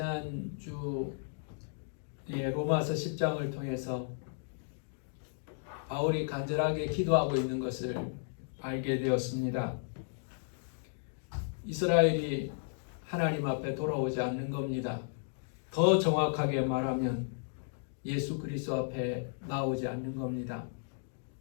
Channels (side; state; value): right; silent; digital silence